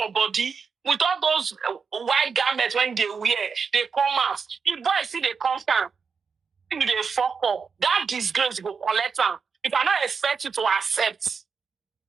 body, with all those white garments when they wear, they come out. The boy see they come down. They fuck up. That disgrace go collect them. If I not expect you to accept.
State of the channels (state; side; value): quieter; left; 5.6 dB